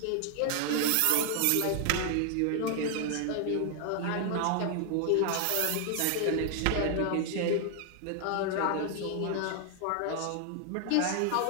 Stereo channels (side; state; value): both; different; correlation 0.00